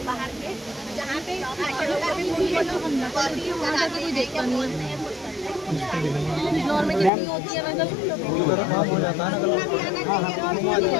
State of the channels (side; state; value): right; drops out; at 7.1 s